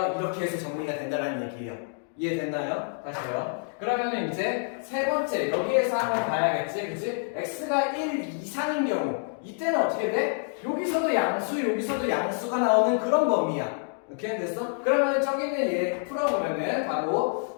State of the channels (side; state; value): right; silent; 60 dB below the other